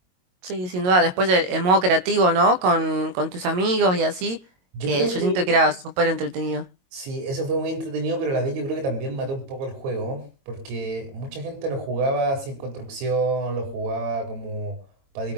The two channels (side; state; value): left; late; 22 ms